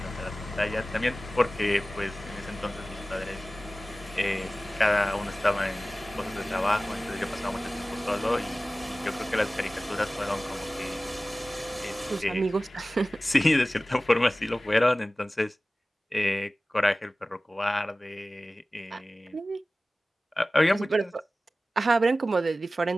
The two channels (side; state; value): both; normal; correlation 0.97